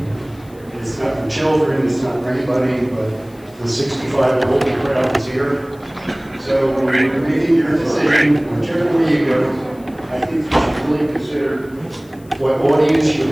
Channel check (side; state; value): left; noise; hiss, 28 dB below the sound